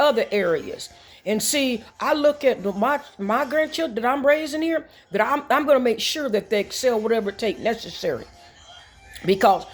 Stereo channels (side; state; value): both; identical; correlation 1.00